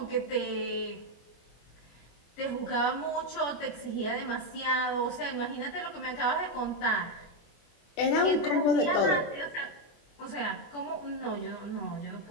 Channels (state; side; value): late; right; 24 ms